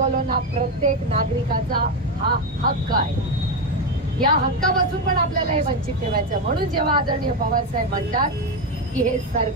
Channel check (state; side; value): normal; both; correlation 0.11